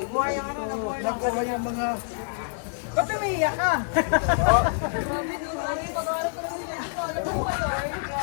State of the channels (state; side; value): silent; right; digital silence